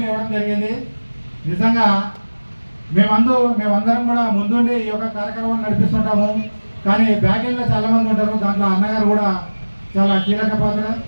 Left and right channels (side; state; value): both; inverted; correlation -1.00